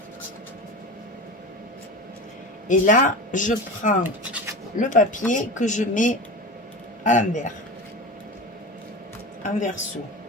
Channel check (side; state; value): both; normal; correlation 0.29